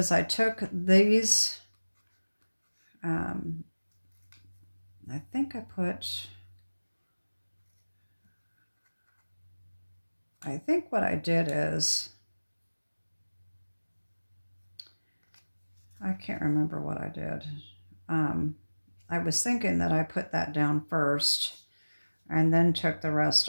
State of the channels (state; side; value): inverted; both; correlation -1.00